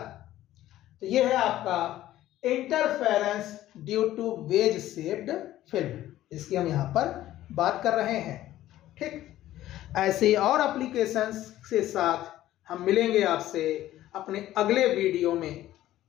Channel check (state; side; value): quieter; right; 14.1 dB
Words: तो ये है आपका interference due to wedge shaped film, इसकी हम यहाँ पर बात कर रहे हैं। ठीक, ऐसे ही और एप्लीकेशंस के साथ हम मिलेंगे आपसे अपने अगले वीडियो में।